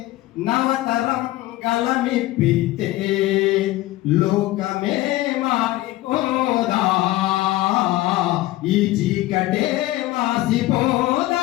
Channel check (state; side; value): quieter; right; 17.2 dB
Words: నవతరం గలమిప్పితే లోకమే మారిపోదా, ఈ చీకటే